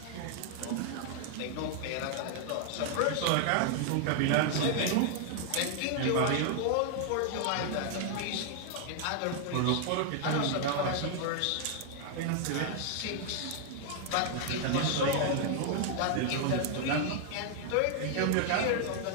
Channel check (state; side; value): different; both; correlation 0.00